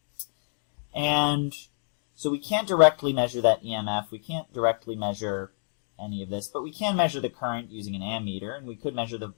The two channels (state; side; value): silent; right; digital silence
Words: And so we can't directly measure that EMF. We can't directly measure any of this, but we can measure the current using an ammeter, and we could measure the